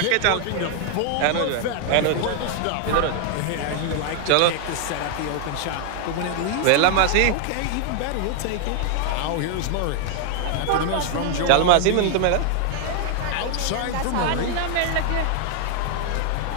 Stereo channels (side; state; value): both; different; correlation 0.00